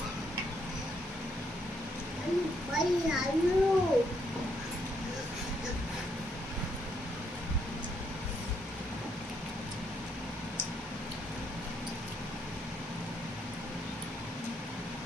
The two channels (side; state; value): both; normal; correlation 0.74